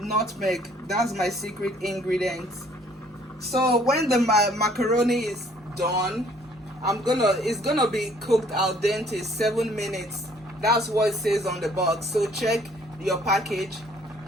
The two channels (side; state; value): both; normal; correlation 0.60